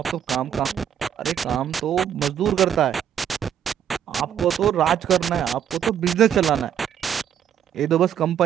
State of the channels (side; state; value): left; quieter; 9.2 dB